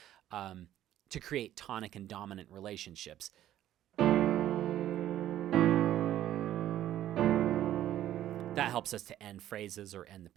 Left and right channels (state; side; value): quieter; left; 12.5 dB